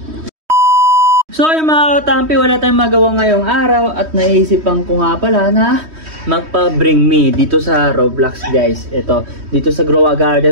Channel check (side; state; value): left; late; 3.1 ms